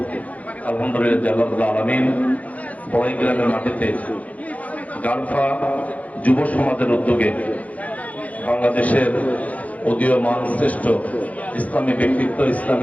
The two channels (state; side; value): late; right; 0.070 ms